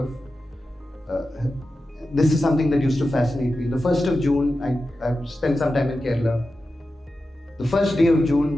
this is something that used to fascinate me. The 1st of June, I spent some time in Kerala. The first day of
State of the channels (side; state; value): both; normal; correlation 0.92